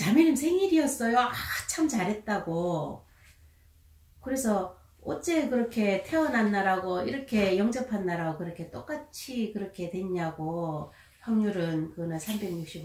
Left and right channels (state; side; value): identical; both; correlation 1.00